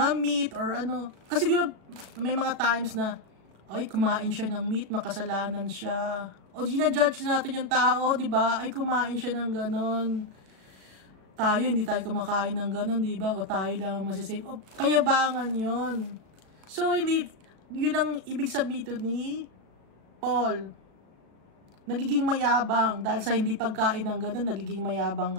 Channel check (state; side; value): late; left; 37 ms